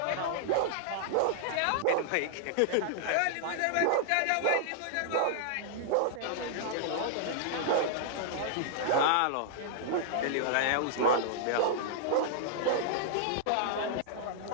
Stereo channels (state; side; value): different; both; correlation -0.01